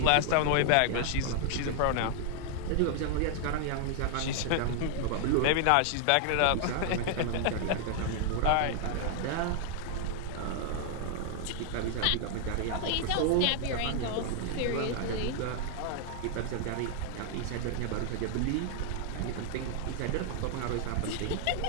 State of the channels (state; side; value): different; both; correlation 0.00